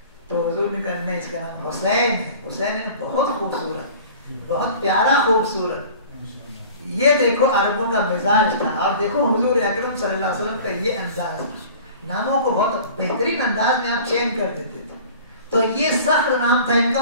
تو حضور نے کہا نہیں، اس کا نام حسین ہے، حسین ہے بہت خوبصورت، بہت پیارا خوبصورت۔ یہ دیکھو عربوں کا مزاج تھا، اور دیکھو حضور اکرم صلی اللہ علیہ وسلم کا یہ انداز تھا، ناموں کو بہت بہترین انداز میں آپ چینج کر دیتے تھے۔ تو یہ سخت نام تھا ان کا،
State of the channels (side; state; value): both; inverted; correlation -0.44